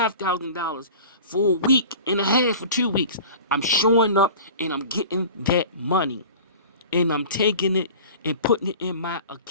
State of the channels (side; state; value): both; inverted; correlation -0.39